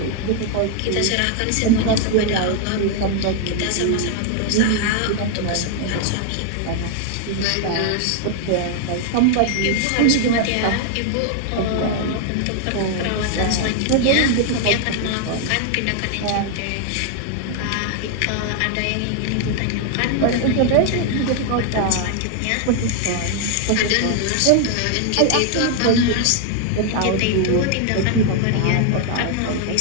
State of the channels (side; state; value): both; different; correlation 0.00